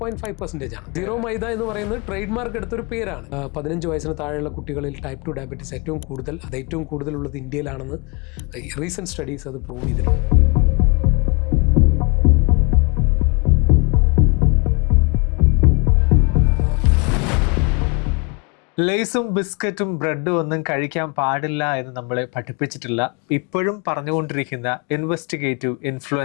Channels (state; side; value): quieter; right; 31.3 dB